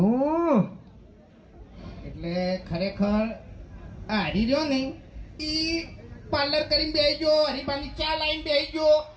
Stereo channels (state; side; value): identical; both; correlation 1.00